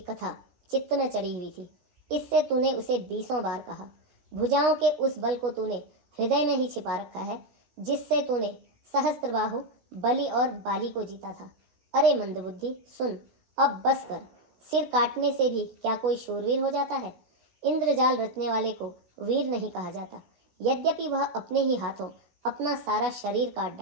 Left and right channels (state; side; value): late; left; 16 ms